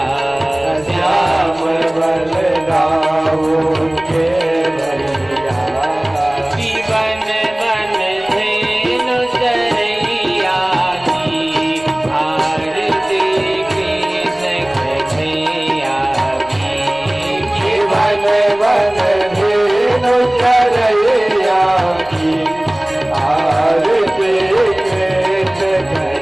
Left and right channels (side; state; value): right; noise; rumble, 24 dB below the sound